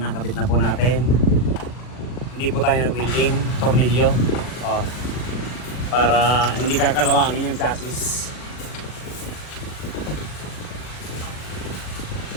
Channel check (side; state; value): right; late; 40 ms